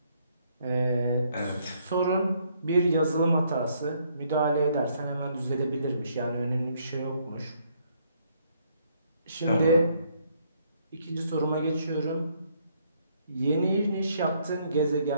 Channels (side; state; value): both; inverted; correlation -0.69